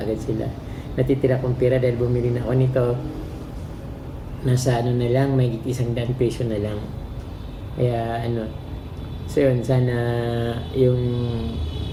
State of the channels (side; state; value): both; identical; correlation 1.00